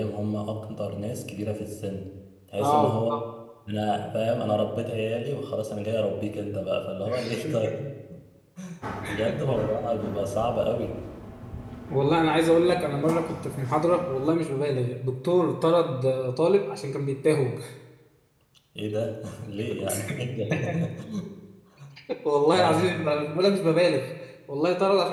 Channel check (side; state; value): both; identical; correlation 1.00